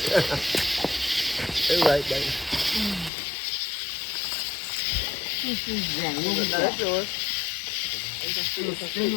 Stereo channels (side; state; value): right; drops out; at 3.1 s